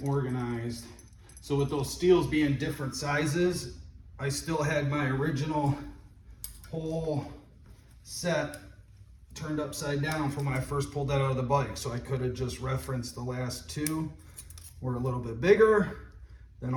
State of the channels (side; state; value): both; identical; correlation 1.00